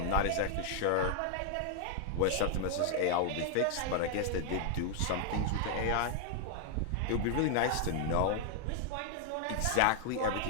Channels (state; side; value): different; both; correlation 0.00